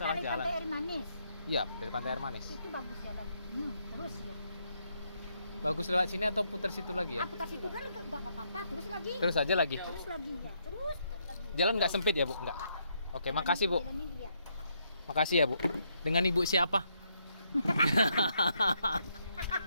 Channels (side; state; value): both; inverted; correlation -0.76